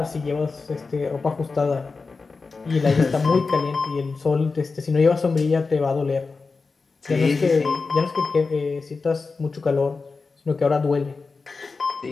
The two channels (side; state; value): right; quieter; 4.3 dB